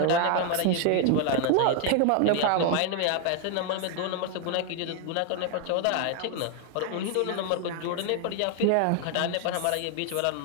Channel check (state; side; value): different; both; correlation 0.00